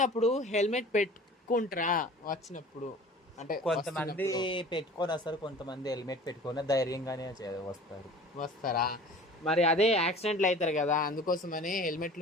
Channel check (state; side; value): normal; both; correlation 0.43